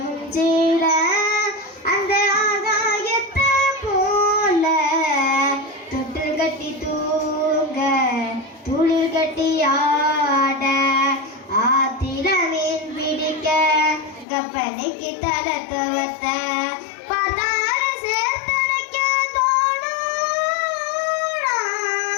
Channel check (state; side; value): drops out; right; at 14.2 s